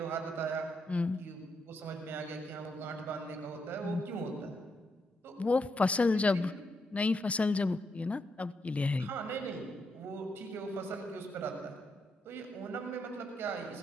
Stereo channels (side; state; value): both; normal; correlation 0.80